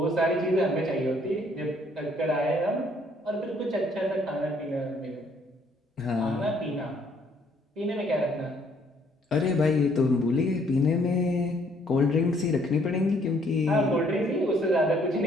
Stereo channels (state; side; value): normal; both; correlation 0.65